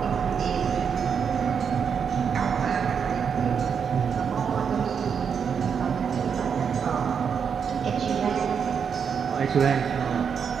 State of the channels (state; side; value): quieter; left; 6.8 dB